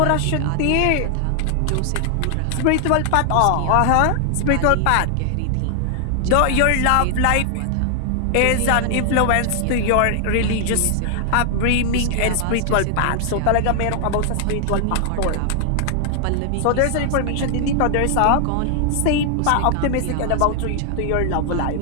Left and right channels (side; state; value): both; different; correlation 0.00